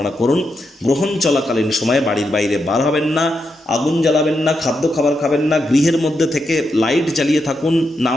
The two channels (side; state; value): both; normal; correlation 0.84